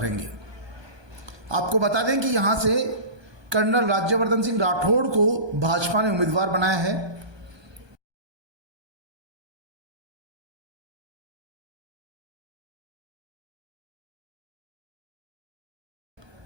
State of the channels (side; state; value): left; late; 1.2 ms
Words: आपको बता दें कि यहां से कर्नल राज्यवर्धन सिंह राठौड़ को भाजपा ने उम्मीदवार बनाया है।